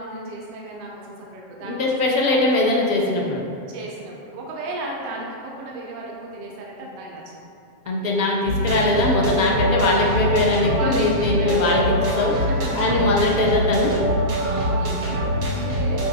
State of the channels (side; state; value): left; late; 7.6 ms